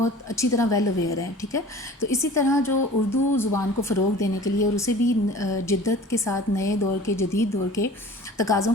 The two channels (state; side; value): normal; both; correlation 0.43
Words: اچھی طرح ویل اویئر ہیں، ٹھیک ہے. تو اسی طرح جو اردو زبان کو فروغ دینے کے لیے اور اسے بھی جدت کے ساتھ نئے دور کے، جدید دور کے تقاضوں